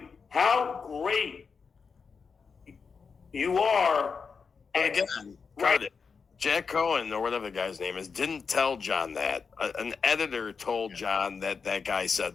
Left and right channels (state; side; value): quieter; right; 5.4 dB